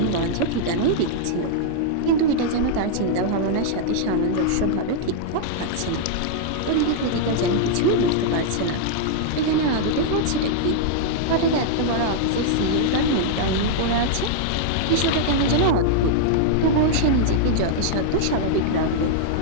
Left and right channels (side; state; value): both; different; correlation -0.01